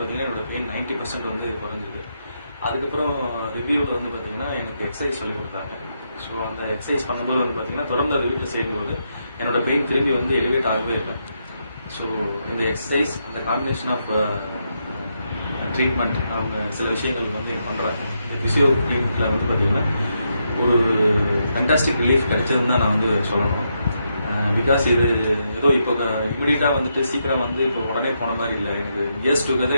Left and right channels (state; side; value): inverted; both; correlation -0.81